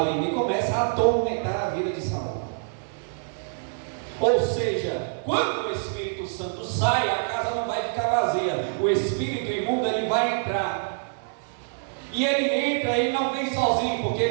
e começa a atormentar a vida de Saul. Ou seja, quando o Espírito Santo sai, a casa não vai ficar vazia. O espírito imundo, ele vai entrar. E ele entra e não vem sozinho, porque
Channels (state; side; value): silent; left; digital silence